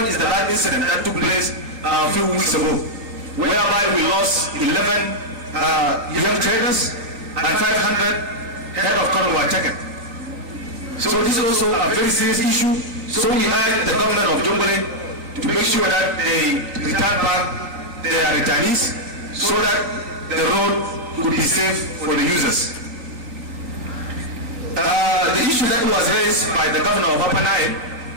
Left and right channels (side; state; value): left; late; 3.9 ms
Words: is the last incident that took place a few weeks ago, whereby we lost 11 young traders and 500 head of cattle were taken. So this is also a very serious issue. So we urge the government of Jonglei to make sure that they return back their returnees so that the road will be safe for the users. The issue that was raised by the governor of Upper Nile,